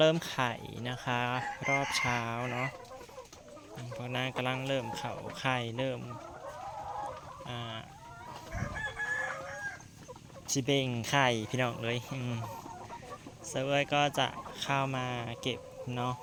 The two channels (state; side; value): identical; both; correlation 1.00